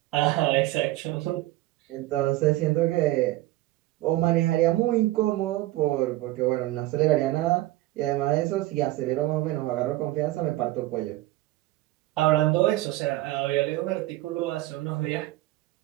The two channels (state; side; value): quieter; left; 17.3 dB